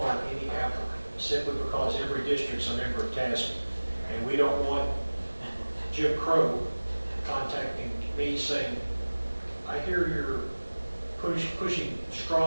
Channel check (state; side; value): inverted; both; correlation -1.00